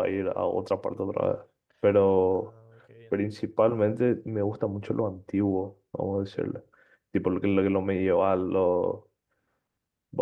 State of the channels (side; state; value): both; identical; correlation 1.00